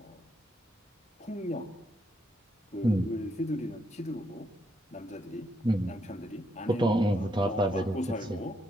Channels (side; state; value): both; normal; correlation 0.77